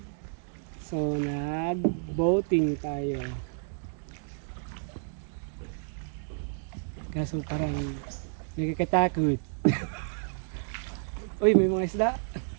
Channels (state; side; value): silent; left; digital silence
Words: So nag-boating tayo. Kaso parang nakakatakot. Uy, may mga isda.